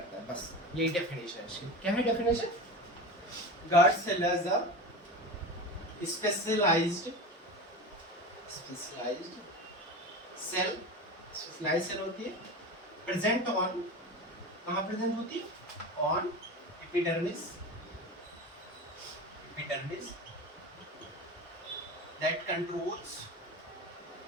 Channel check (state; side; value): normal; both; correlation 0.28